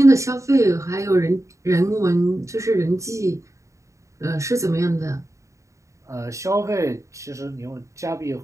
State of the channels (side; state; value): left; late; 0.15 ms